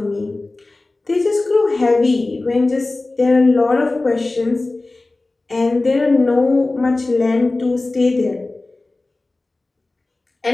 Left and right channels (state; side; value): quieter; right; 3.1 dB